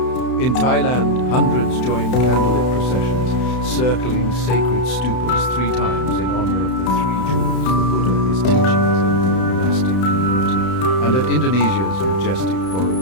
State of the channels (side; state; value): right; late; 31 ms